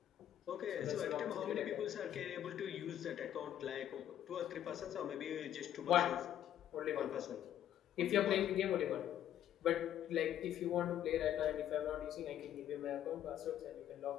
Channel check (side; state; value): right; quieter; 11.0 dB